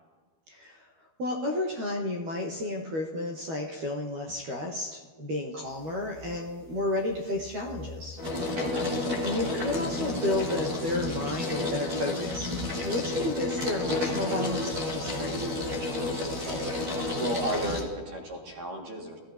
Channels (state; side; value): late; left; 12 ms